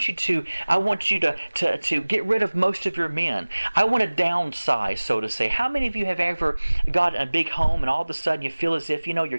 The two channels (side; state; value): both; inverted; correlation -1.00